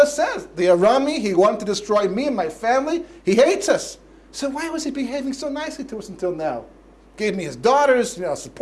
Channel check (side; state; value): both; identical; correlation 1.00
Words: says, the Arami, he wanted to destroy me and my family. He hates us. So why was he behaving so nicely to us until now? Gave me his daughters,